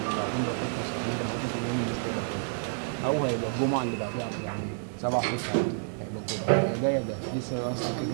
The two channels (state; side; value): silent; left; digital silence